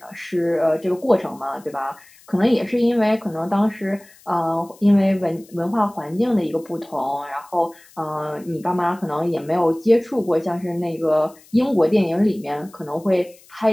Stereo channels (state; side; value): noise; left; hiss, 26 dB below the sound